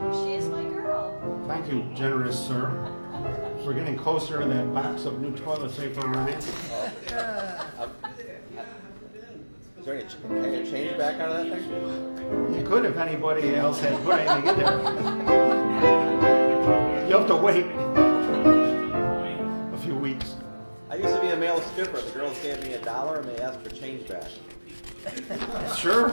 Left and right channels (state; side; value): inverted; both; correlation -1.00